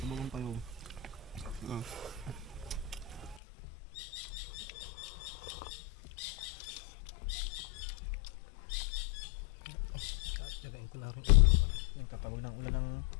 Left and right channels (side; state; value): right; drops out; at 3.4 s